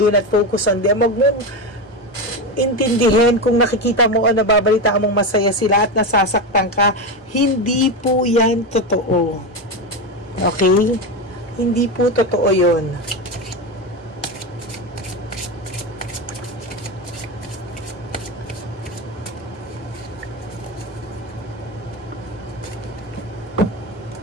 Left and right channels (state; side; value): normal; both; correlation 0.16